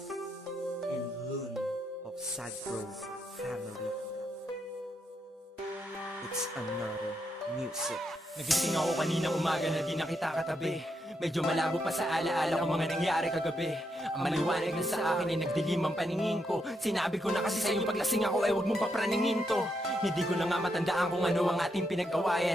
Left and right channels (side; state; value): both; normal; correlation 0.80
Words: and Loon of SAG Pro Family. It's another music. Nagising ako kanina umaga na di na kita katabi. Medyo malabo pa sa alaala ko mga nangyari kagabi. Ang maliwanag na sa akin ay nagdilim ang paningin ko. Sinabi ko na kasi sa'yo paglasing ako ay huwag mong papraningin to. Hindi ko na nga matandaan kung ano ang ating